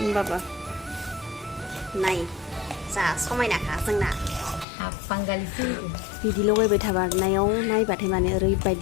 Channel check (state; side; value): drops out; right; at 4.7 s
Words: होनबाबो नाय जा समायनाखा जोंना बिदि लगायबाय थाबारनायाव नायबाथाय माने